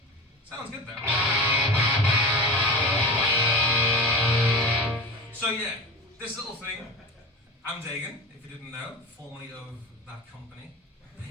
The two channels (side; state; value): both; normal; correlation 0.30